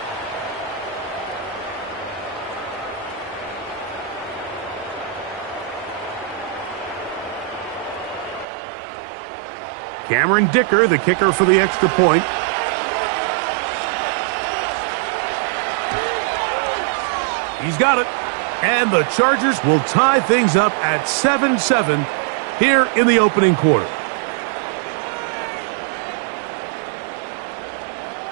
Cameron Dicker, the kicker for the extra point. He's got it. And the Chargers will tie things up at 7-7 here in the opening quarter.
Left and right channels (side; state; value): left; drops out; at 8.5 s